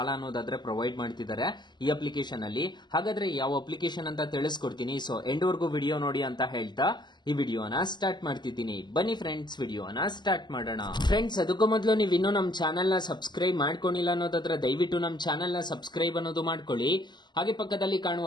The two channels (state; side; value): late; right; 0.21 ms